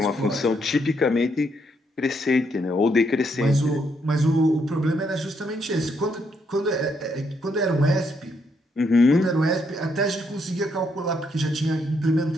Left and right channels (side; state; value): both; normal; correlation 0.75